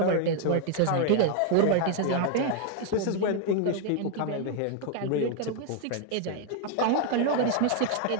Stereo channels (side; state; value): both; different; correlation 0.01